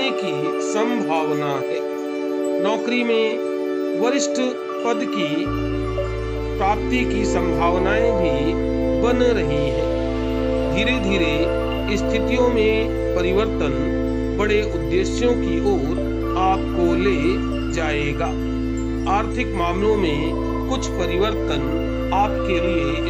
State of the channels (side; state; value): both; identical; correlation 1.00